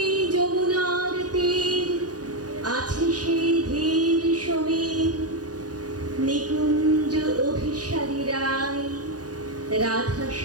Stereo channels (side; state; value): left; late; 0.68 ms